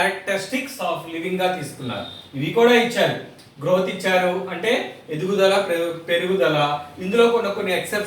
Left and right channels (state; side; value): identical; both; correlation 1.00